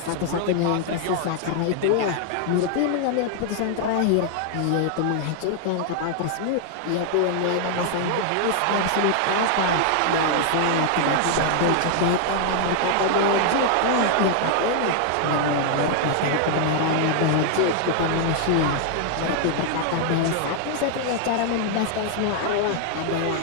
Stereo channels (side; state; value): both; different; correlation 0.00